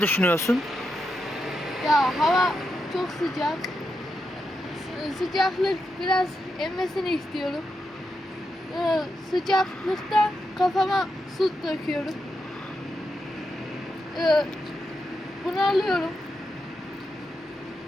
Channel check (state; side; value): normal; both; correlation 0.85